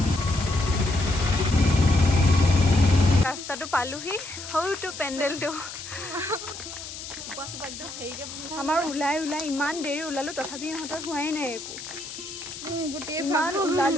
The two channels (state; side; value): noise; left; hiss, 11 dB below the sound